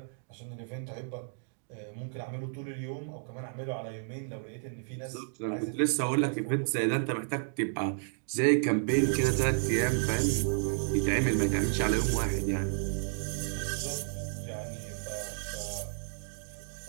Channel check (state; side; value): silent; left; digital silence